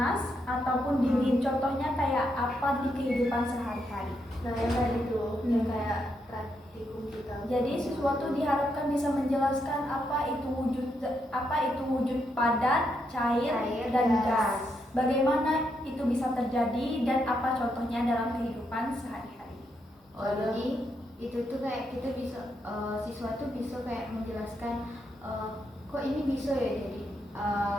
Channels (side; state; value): both; normal; correlation 0.80